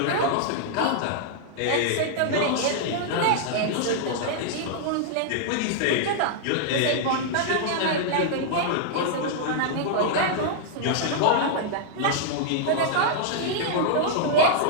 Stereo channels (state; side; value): different; both; correlation -0.01